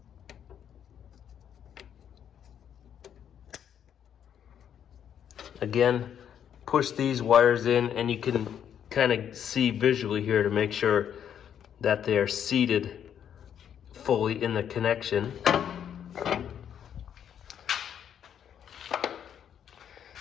Again, push these wires in, and you can kind of see visually here to make sure that they are seated fully in the connection.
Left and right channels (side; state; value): right; quieter; 9.0 dB